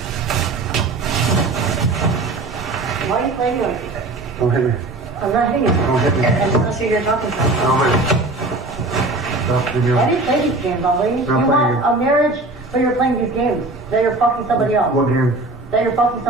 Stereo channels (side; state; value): left; quieter; 3.0 dB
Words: Why are you playing like this? Don't hit me. I'm not hitting you. Don't hit me. I just want to see who you're talking to. Don't hit me. Stop. Leave me Why alone. do you play these games, Ali? You playing want games. a marriage, but you're playing these games. That you're fucking somebody else. What game? That you're fucking